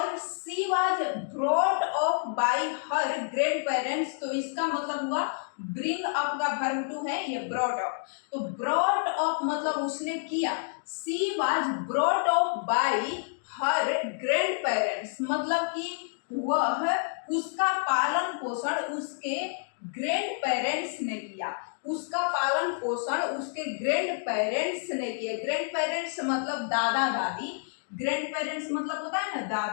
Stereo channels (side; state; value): right; silent; digital silence